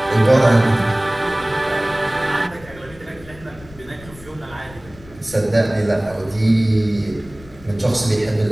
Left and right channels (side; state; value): left; noise; rumble, 20 dB below the sound